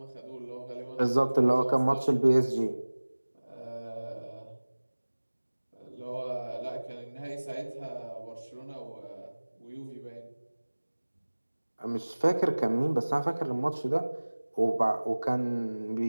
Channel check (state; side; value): inverted; both; correlation -1.00